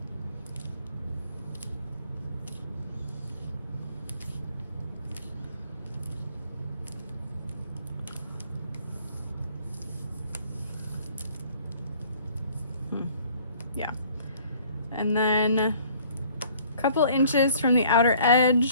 Yeah, and then a couple inches from the outer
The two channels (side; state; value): both; inverted; correlation -0.57